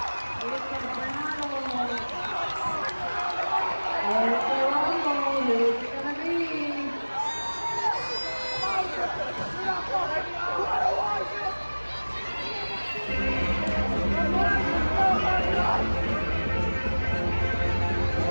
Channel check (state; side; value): inverted; both; correlation -1.00